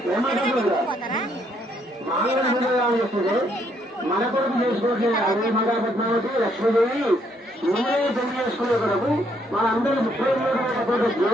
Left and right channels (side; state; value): both; normal; correlation 0.71